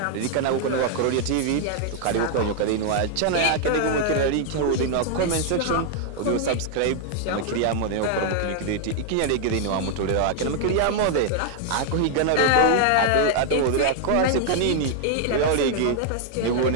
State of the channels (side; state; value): both; different; correlation 0.00